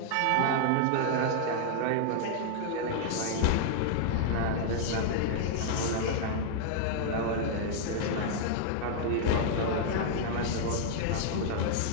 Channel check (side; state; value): both; different; correlation 0.00